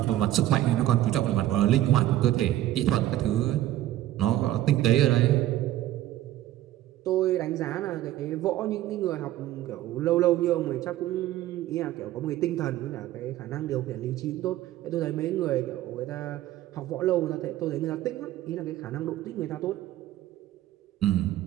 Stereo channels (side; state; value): left; quieter; 14.0 dB